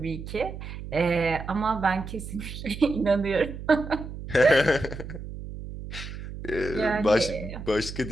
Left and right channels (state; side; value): noise; right; hum, 10 dB below the sound